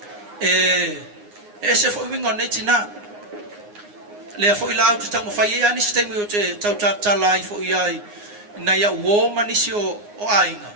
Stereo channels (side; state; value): left; late; 9.7 ms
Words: e se foi wingo nei tina le foi la tu tamo fai ia ni sistemi o te tautala i foi ai na ia uo manisi o ainga